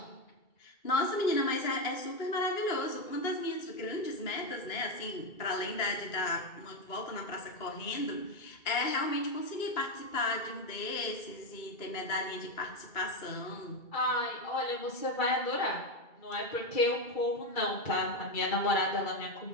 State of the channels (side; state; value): right; late; 2.3 ms